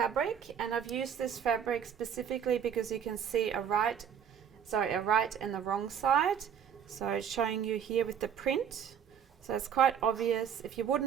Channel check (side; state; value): left; quieter; 8.3 dB